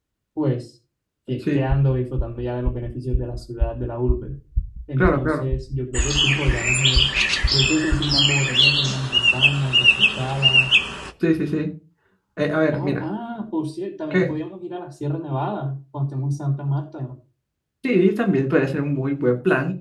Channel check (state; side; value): identical; both; correlation 1.00